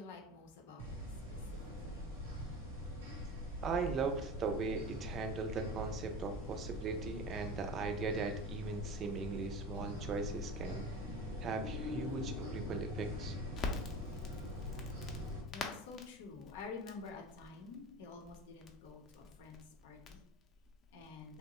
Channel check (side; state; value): both; normal; correlation 0.33